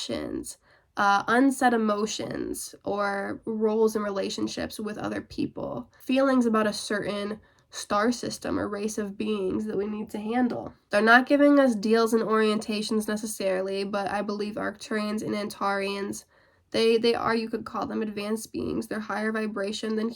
unsaid emotions or roles in relationships with other people, feelings about a certain star system or race of beings that we need to handle. They're not giving us deals and orientations necessarily, but I believe Arcturians and Antarians, they are, you could call them advanced beings. They're higher vibration than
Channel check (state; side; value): identical; both; correlation 1.00